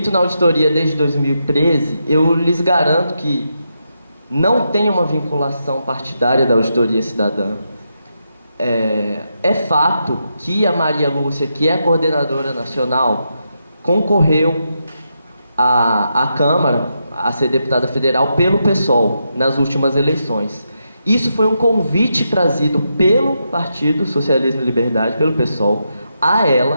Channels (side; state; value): both; inverted; correlation -0.84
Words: na auditoria desde 2013, eu lhes garanto que não tem uma vinculação partidária da auditoria cidadã. É fato que a Maria Lúcia, que é a coordenadora nacional, concorreu à Câmara, a ser deputada federal, pelo PSOL, nas últimas eleições. Isso foi um convite trazido pelo Partido Socialismo e Liberdade, pelo PSOL, a